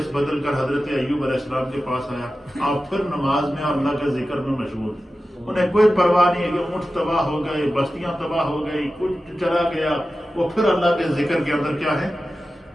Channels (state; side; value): normal; both; correlation 0.94